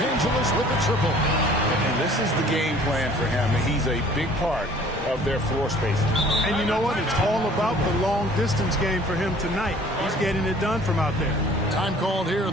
Angeles with the triple. And this is the game plan for him. He's a big part of their floor spacing. And you know what? It's all about the long-distance game for him tonight. He's getting it done from out there. Time called here.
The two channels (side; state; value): both; normal; correlation 0.52